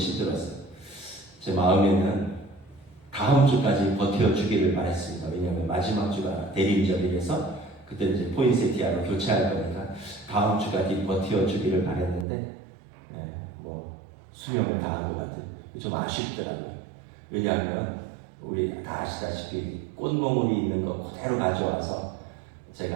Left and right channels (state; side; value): drops out; left; at 12.2 s